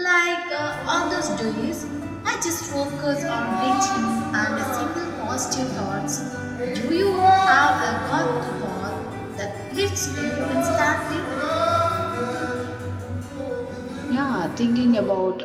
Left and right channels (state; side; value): identical; both; correlation 1.00